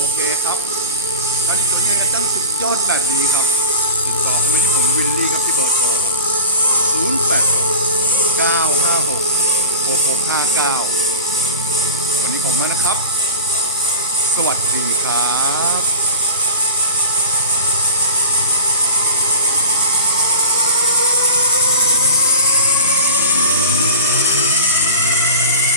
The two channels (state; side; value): inverted; both; correlation -0.33